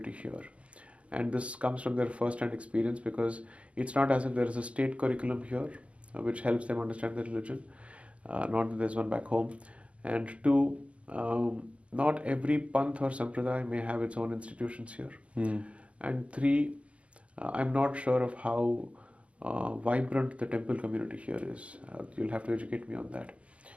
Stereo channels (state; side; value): late; left; 0.062 ms